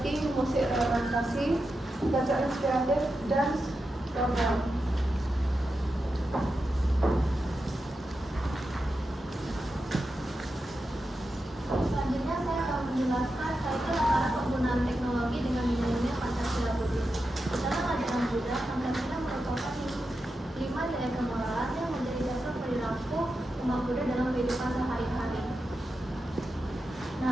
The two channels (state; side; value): normal; both; correlation 0.89